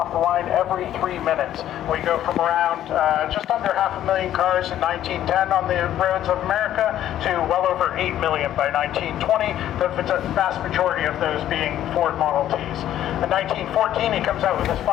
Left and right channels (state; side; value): quieter; right; 11.9 dB